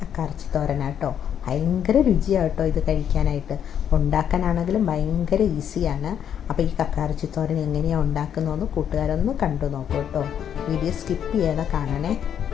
കക്കാറച്ചി തോരനാട്ടോ. ഭയങ്കര രുചിയാട്ടോ ഇത് കഴിക്കാനായിട്ട്. ഉണ്ടാക്കാനാണെങ്കിലും ഭയങ്കര ഈസിയാണ്. അപ്പോൾ ഈ കക്കാറച്ചി തോരൻ എങ്ങനെയാണ് ഉണ്ടാക്കുന്നതെന്ന് കൂട്ടുകാരൊന്ന് കണ്ടു നോക്കൂ കേട്ടോ. വീഡിയോ സ്കിപ്പ് ചെയ്യാതെ കാണണേ.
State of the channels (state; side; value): quieter; right; 9.0 dB